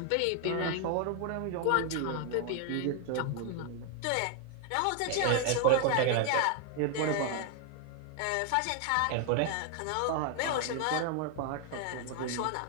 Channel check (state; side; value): different; both; correlation 0.00